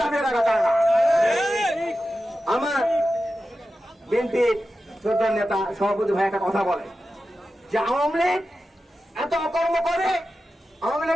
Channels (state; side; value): normal; both; correlation 0.92